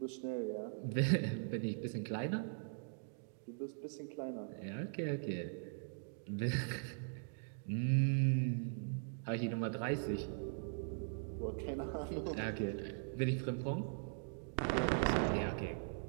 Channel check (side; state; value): left; silent; digital silence